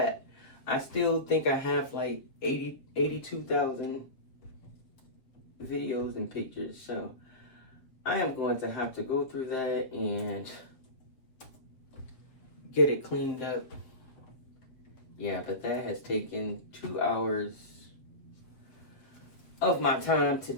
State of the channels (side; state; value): right; late; 7.4 ms